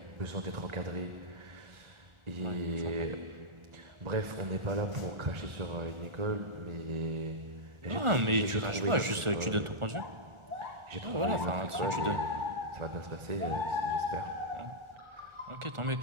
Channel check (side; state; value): left; late; 1.4 ms